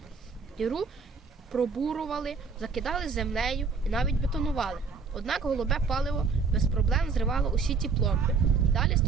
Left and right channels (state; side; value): quieter; left; 4.8 dB